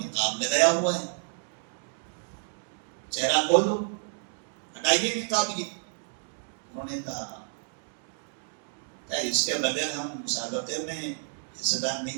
لگایا ہوا ہے، چہرہ کھولو، ہٹائیے نقاب. یہ انہوں نے کہا کیا اس کے بغیر ہم مسابقے میں حصہ دار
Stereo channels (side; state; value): left; silent; digital silence